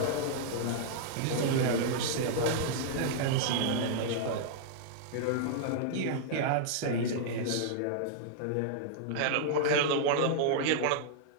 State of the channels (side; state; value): both; different; correlation -0.01